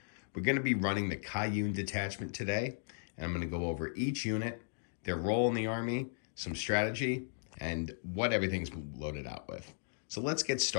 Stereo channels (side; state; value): right; silent; digital silence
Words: We're going to be running the Kauyon detachment today, and I'm going to go over each unit, their role in the army, some strategy, and what everything's loaded out with. So let's get